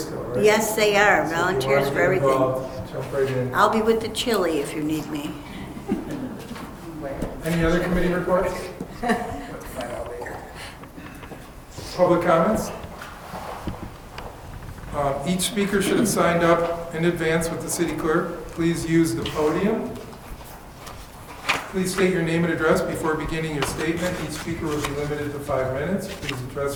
still, right? Yes, they are, So if you volunteers wanna for get everything. involved, jump right in. I'll be with the chili if you need me. Any other committee reports? Public comments? Each speaker should have signed up in advance with the city clerk. Please use the podium. Please state your name and address before beginning your statement. Each speaker will be limited to 5 minutes. Please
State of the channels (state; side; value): identical; both; correlation 1.00